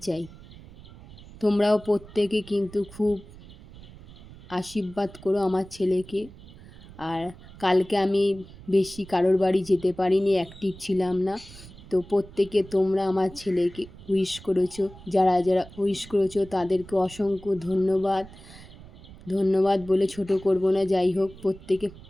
চাই। তোমরাও প্রত্যেকে কিন্তু খুব আশীর্বাদ করো আমার ছেলেকে। আর কালকে আমি বেশি কারোর বাড়ি যেতে পারিনি, অ্যাক্টিভ ছিলাম না। তো প্রত্যেকে তোমরা আমার ছেলেকে উইশ করেছো, যারা যারা উইশ করেছো তাদেরকে অসংখ্য ধন্যবাদ। ধন্যবাদ বলে ছোট করব না। যাই হোক, প্রত্যেকে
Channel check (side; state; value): right; noise; rumble, 19 dB below the sound